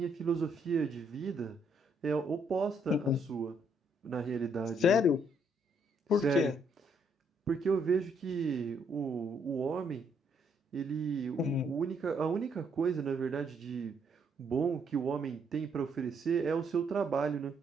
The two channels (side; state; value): both; normal; correlation 0.71